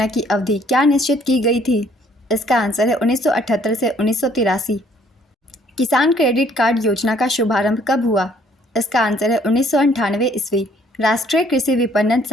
की अवधि क्या निश्चित की गई थी? इसका आंसर है 1978 से 1983। किसान क्रेडिट कार्ड योजना का शुभारंभ कब हुआ? इसका आंसर है 1998 ईस्वी। राष्ट्रीय कृषि विपणन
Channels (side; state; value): both; normal; correlation 0.62